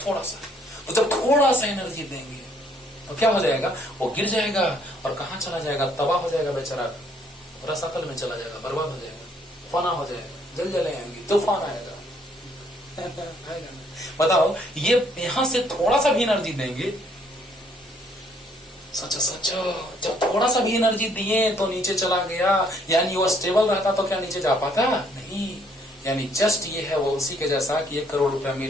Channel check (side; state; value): both; normal; correlation 0.65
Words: थोड़ा सा, तो जब थोड़ा सा एनर्जी देंगे तो क्या हो जाएगा? वो गिर जाएगा और कहां चला जाएगा? तबाह हो जाएगा बेचारा, रसातल में चला जाएगा, बर्बाद हो जाएगा, फना हो जाएगा, जलजलें आएंगी, तूफान आएगा। बताओ, ये यहां से थोड़ा सा भी एनर्जी देंगे, सोचो सोचो, जब थोड़ा सा भी एनर्जी दिए तो नीचे चला गया, यानी वो स्टेबल रहता तो क्या नीचे जा पाता? नहीं। यानी जस्ट ये है वो उसी के जैसा कि 1 करोड़ रुपया